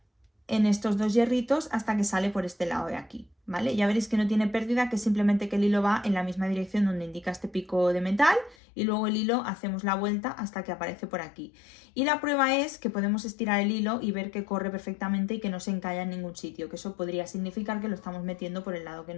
en estos dos hierritos hasta que sale por este lado de aquí, ¿vale? Ya veréis que no tiene pérdida, que simplemente que el hilo va en la misma dirección donde indica este pico de metal y luego el hilo hacemos la vuelta hasta que aparece por aquí. Y la prueba es que podemos estirar el hilo y ver que corre perfectamente y que no se encalla en ningún sitio, que eso podría significar que lo estamos metiendo por el lado que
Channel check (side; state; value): right; drops out; at 8.6 s